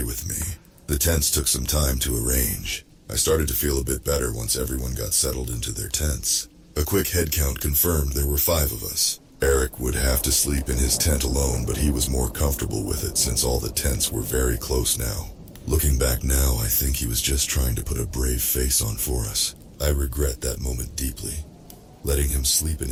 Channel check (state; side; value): identical; both; correlation 1.00